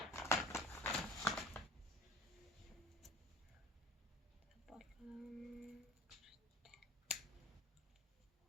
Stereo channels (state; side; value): normal; both; correlation 0.40